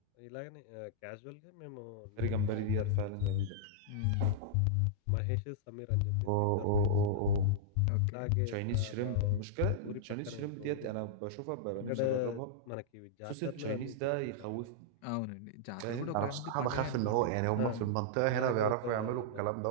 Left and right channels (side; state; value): both; different; correlation -0.02